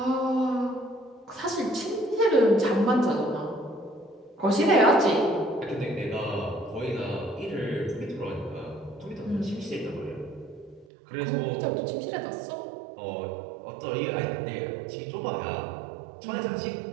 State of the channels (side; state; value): left; drops out; at 10.9 s